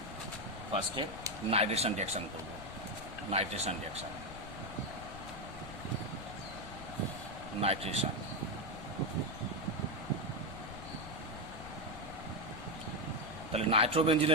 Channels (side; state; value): left; noise; rumble, 12 dB below the sound